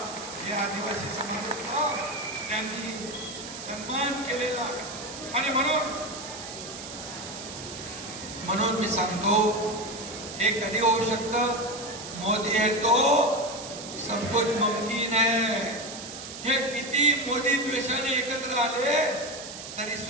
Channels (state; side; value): noise; right; hiss, 11 dB below the sound